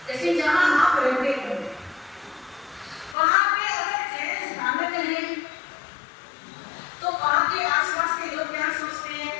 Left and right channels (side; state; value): right; drops out; at 3.2 s